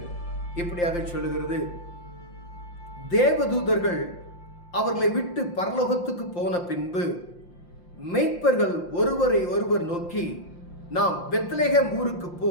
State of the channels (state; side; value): late; right; 5.7 ms